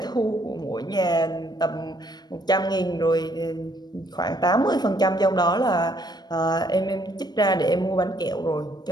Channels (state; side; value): late; right; 0.20 ms